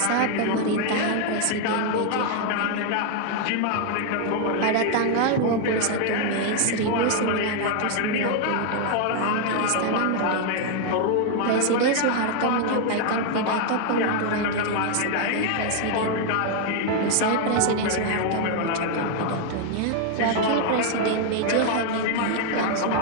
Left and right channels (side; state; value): both; different; correlation 0.00